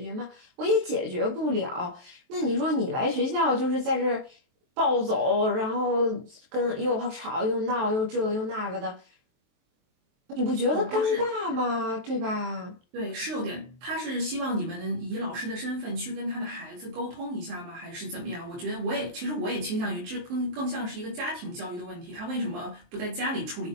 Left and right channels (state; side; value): late; left; 23 ms